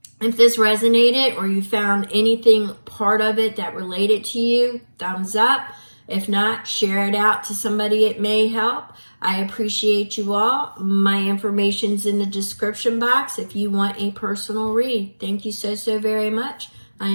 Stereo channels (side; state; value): both; inverted; correlation -1.00